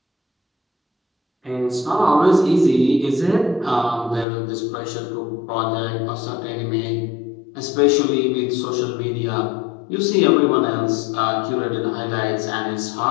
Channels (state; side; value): drops out; right; at 4.2 s